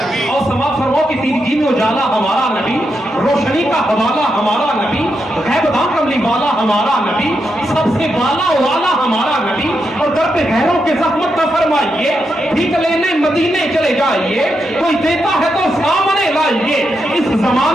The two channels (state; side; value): normal; both; correlation 0.84